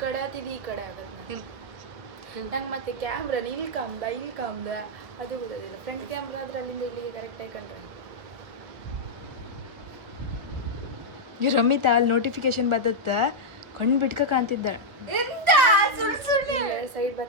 ಕಡೆ ಆತಿದ್ದು ಈ ಕಡೆ ಆಗತ್ತೆ. ನಂಗೆ ಮತ್ತೆ ಕ್ಯಾಮ್ರಾ ಇಲ್ಲಿ ಕಾಮ್ದ ಅದು ಗೊತ್ತಾಗಿಲ್ಲ. ಫ್ರಂಟ್ ಕ್ಯಾಮ್ರಾ ಆದ್ರೆ ಅಲ್ಲಿಂದ ಇಲ್ಲಿಗೆ ಕರೆಕ್ಟಾಗಿ ಕಂಡ್ರೆ. ಈ ರಮಿತಾ ಅಲ್ಲಿ ನೋಟಿಫಿಕೇಶನ್ ಬರ್ತತ್ತ, ಕಣ್ಣು ಬಿಟ್ಕ ಕಾಣ್ತಿದ್ದ. ಸೈಡ್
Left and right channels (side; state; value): left; late; 1.4 ms